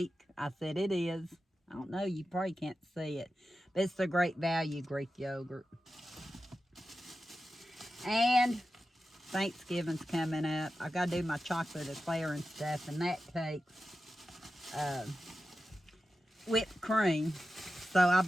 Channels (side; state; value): both; normal; correlation 0.92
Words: I said, it is. I don't know, you probably can't see it, but it's a Great Value Greek yogurt. And Thanksgiving's coming up. I got to do my chocolate eclair and stuff, and that takes whipped cream. So I